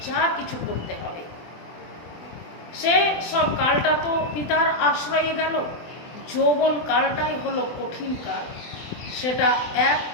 যা কিছু করতে হবে। সে সব কালটা তো পিতার আশ্রয়ে গেল, যৌবন কালটাই হলো কঠিন কাল, সেটা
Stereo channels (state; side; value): late; right; 24 ms